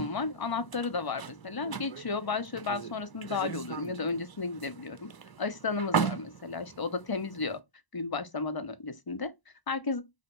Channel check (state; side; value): late; right; 1.0 ms